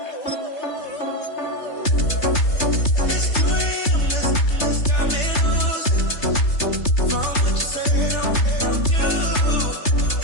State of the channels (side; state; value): right; late; 3.3 ms